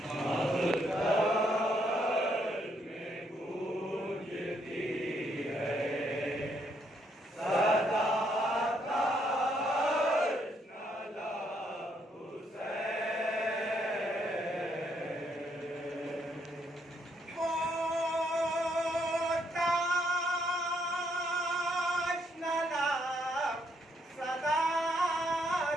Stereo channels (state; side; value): normal; both; correlation 0.73